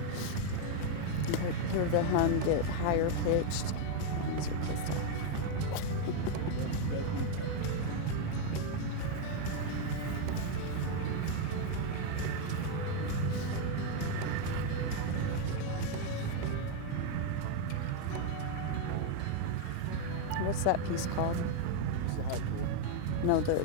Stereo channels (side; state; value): both; different; correlation 0.01